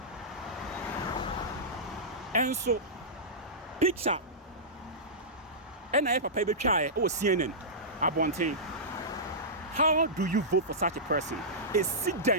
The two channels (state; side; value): normal; both; correlation -0.15